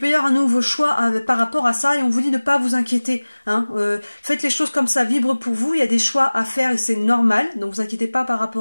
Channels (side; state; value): both; inverted; correlation -1.00